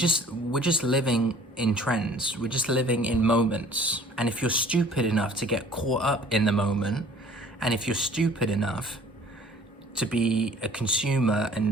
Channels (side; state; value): both; normal; correlation 0.51